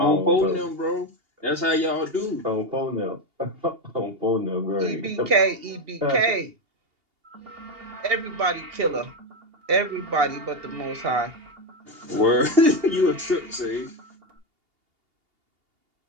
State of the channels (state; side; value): late; left; 2.8 ms